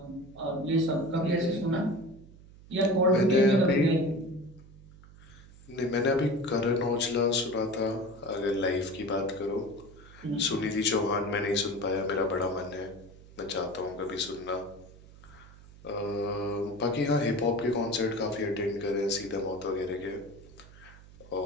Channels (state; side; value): noise; right; hum, 21 dB below the sound